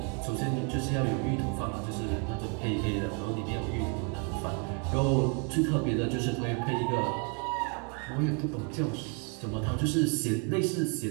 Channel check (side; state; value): left; quieter; 36.0 dB